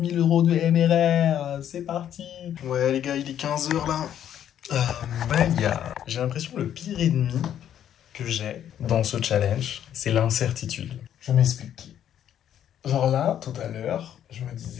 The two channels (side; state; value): right; quieter; 10.2 dB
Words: 000 euros de MRR, c'est parti. Ouais les gars, il est 15h là. J'ai l'impression que le pire ennemi que j'ai dans ce challenge, c'est l'incertitude. Je m'explique. Genre là, tout à l'heure, je me